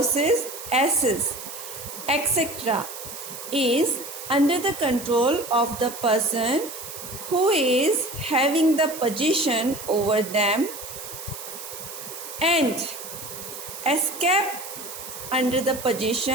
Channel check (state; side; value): noise; right; hiss, 11 dB below the sound